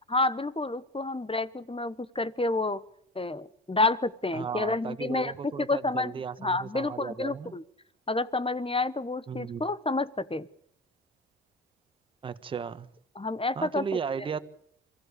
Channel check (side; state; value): both; normal; correlation 0.32